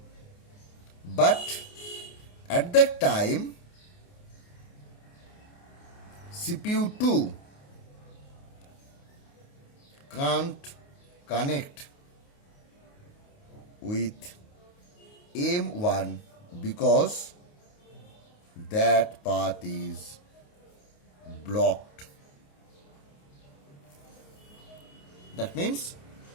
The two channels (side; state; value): right; late; 28 ms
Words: But at that time, CPU 2 can't connect with M1 because that path is blocked. That means